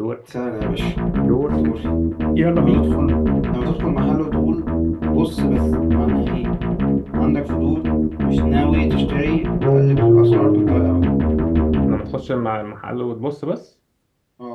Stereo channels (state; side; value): identical; both; correlation 1.00